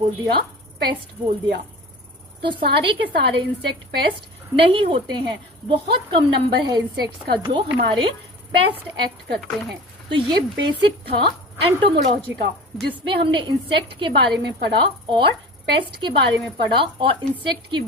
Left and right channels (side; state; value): both; normal; correlation 0.37